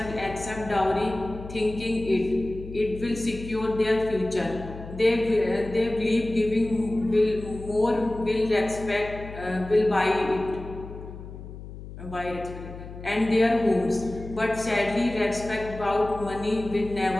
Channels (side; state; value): left; noise; hum, 13 dB below the sound